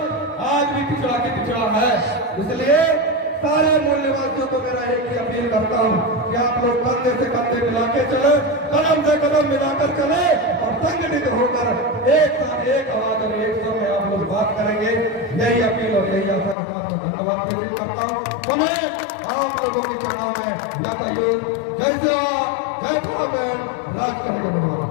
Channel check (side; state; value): right; drops out; at 16.6 s